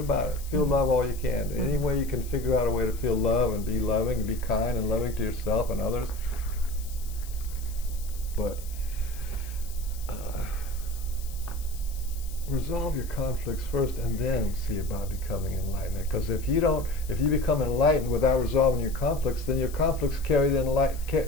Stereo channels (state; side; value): noise; left; hiss, 17 dB below the sound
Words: it. Feel love all you can. Any way you can figure out a way to feel love and be loving and be kind and loving to yourself and others. But resolve your conflicts first and then see about becoming enlightenment. Because if you become enlightened without resolving your conflicts, then your conflicts